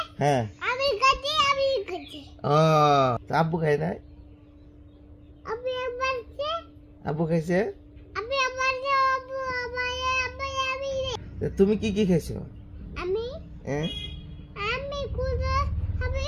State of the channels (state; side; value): identical; both; correlation 1.00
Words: হ্যাঁ। ও আব্বু খাই নাই? আব্বু খাইছে? তুমি কি খাইছো?